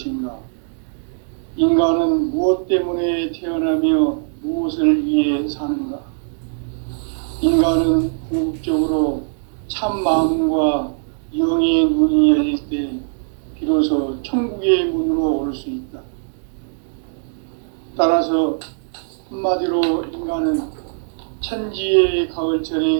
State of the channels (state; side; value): silent; left; digital silence